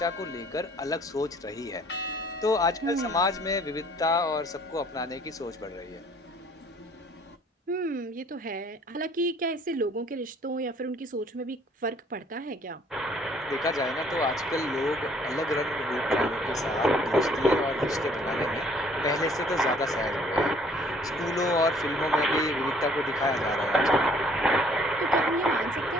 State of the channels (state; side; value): normal; both; correlation 0.59